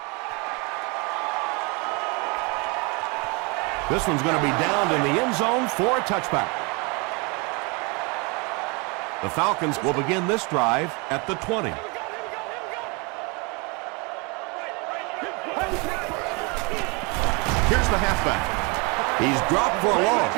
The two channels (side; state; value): left; quieter; 30.0 dB